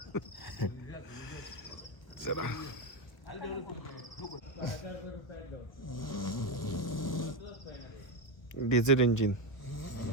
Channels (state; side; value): late; right; 1.2 ms